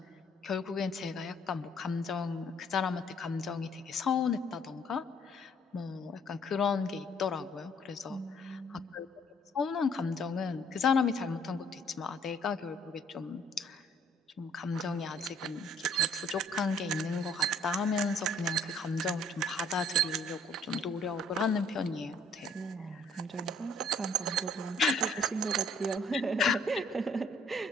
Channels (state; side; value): normal; both; correlation 0.62